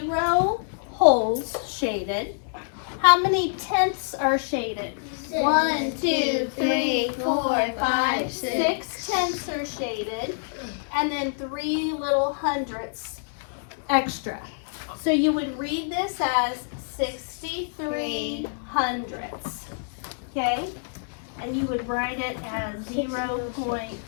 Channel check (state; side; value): silent; right; digital silence